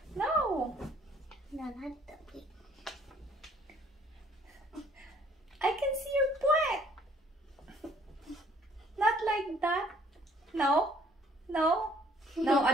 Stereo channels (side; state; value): both; normal; correlation 0.60